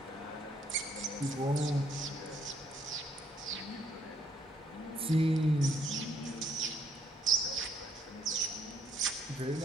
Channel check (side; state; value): both; normal; correlation 0.69